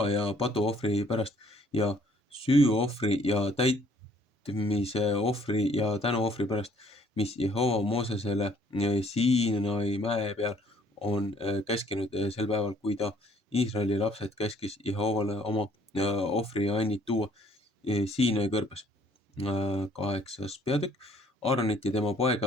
ja patuohvri pärast ja süüohvri ja täitmise ohvri ja tänuohvri pärast, mis Jehova Moosesele Siinai mäe peal on käskinud sel päeval, kui ta Iisraeli lapsed käskis Jehovale oma ohvriannid tuua Siinai kõrbes. 8. peatükk. Aaronit ja tema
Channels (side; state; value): both; normal; correlation 0.61